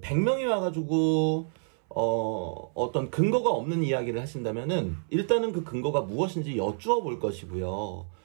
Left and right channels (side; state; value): left; silent; 59 dB below the other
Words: 100명이 와가지고 어떤 근거가 없는 이야기를 하신다면은 일단은 그 근거가 무엇인지 여쭈어 볼 것이고요.